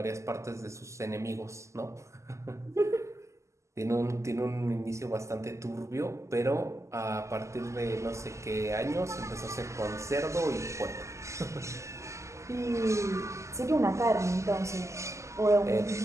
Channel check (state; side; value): late; left; 0.14 ms